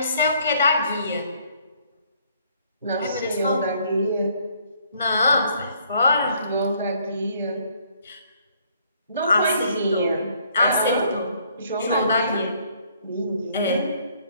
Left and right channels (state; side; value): inverted; both; correlation -0.64